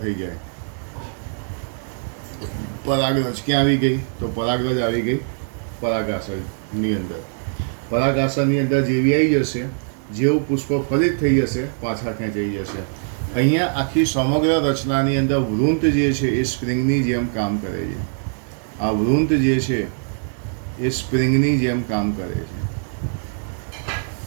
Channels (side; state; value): left; silent; digital silence